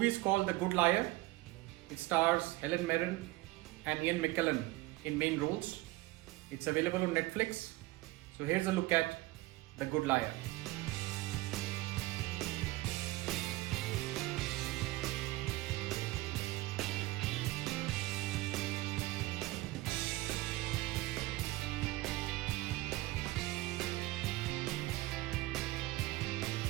is called The Good Liar. It stars Helen Mirren and Ian McKellen in main roles. It's available on Netflix. So here's a look at The Good Liar.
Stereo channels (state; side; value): quieter; left; 19.1 dB